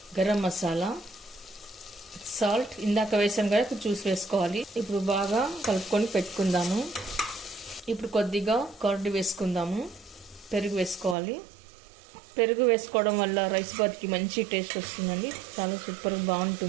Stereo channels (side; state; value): left; drops out; at 11.2 s